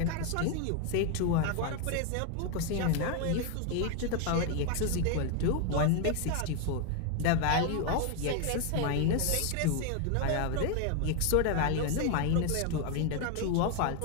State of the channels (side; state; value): both; different; correlation 0.01